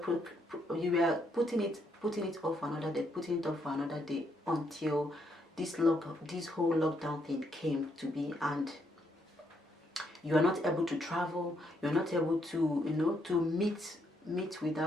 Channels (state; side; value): normal; both; correlation 0.75